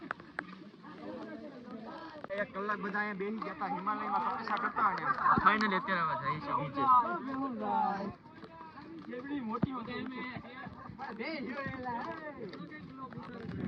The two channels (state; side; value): identical; both; correlation 1.00